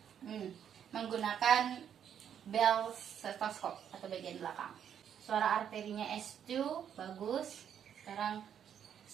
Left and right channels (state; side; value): quieter; left; 8.8 dB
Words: Menggunakan bell stetoskop atau bagian belakang. Suara arterinya S2 bagus. Sekarang